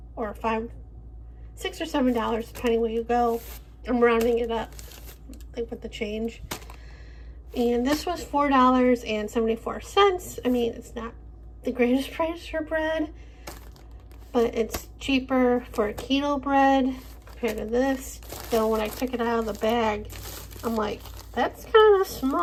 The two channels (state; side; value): identical; both; correlation 1.00